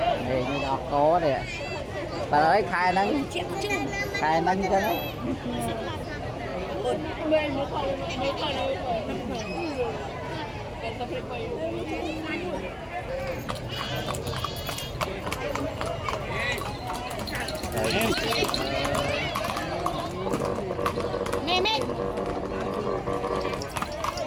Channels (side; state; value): both; identical; correlation 1.00